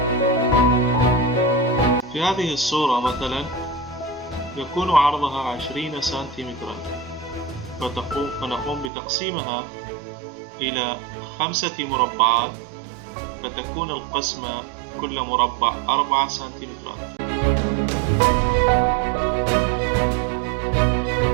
في هذه الصورة مثلا يكون عرضها 20 سنتيمترا، فنقوم بتقسيمها إلى 5 مربعات، فتكون القسمة كل مربع 4 سنتيمترات.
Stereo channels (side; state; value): left; drops out; at 8.9 s